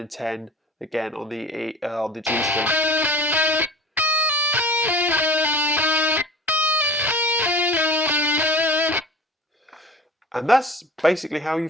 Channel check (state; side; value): normal; both; correlation 0.41